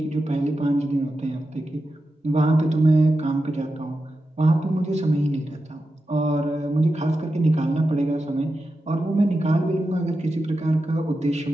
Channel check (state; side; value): normal; both; correlation 0.90